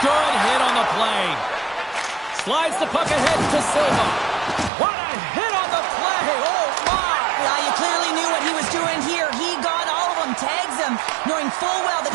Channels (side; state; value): left; drops out; at 4.7 s